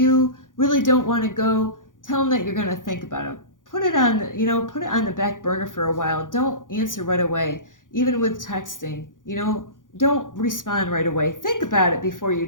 really don't want to go, tell them that you're going to think about it. Put it on, you know, put it on the back burner for a while. Don't answer right away. Even with texting, you know, don't respond right away. Think about it before you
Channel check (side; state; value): right; late; 0.88 ms